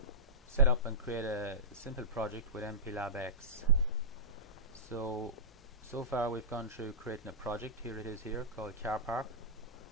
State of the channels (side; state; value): both; normal; correlation -0.16